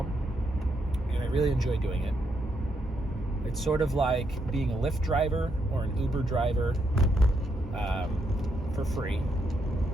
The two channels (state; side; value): normal; both; correlation 0.78